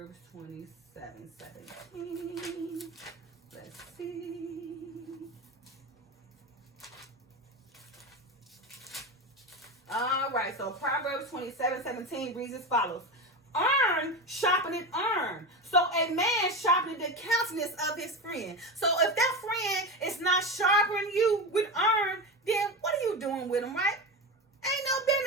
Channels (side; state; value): both; normal; correlation 0.21